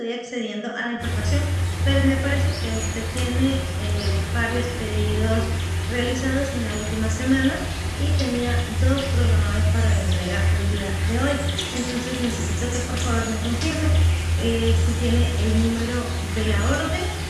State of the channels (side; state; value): both; identical; correlation 1.00